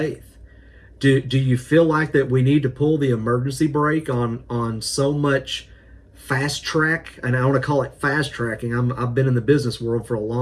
Do you feel like that we need to pull the emergency brake on so much fast track? And I want to call it fast tracking. I've been in the business world for a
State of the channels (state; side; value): identical; both; correlation 1.00